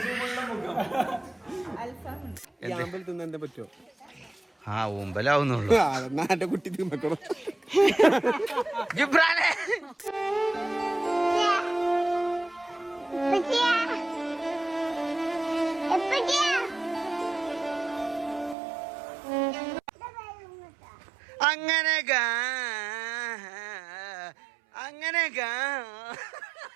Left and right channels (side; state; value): left; drops out; at 18.6 s